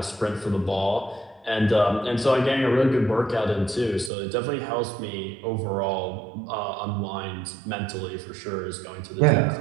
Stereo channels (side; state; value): left; drops out; at 4.1 s